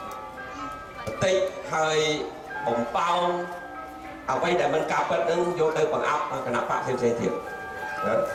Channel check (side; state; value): both; identical; correlation 1.00